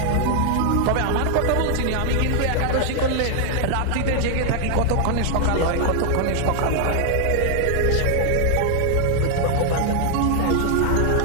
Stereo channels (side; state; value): both; different; correlation 0.00